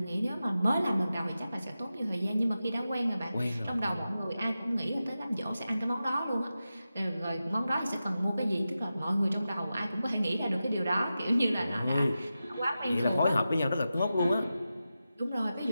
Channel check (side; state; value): both; inverted; correlation -0.92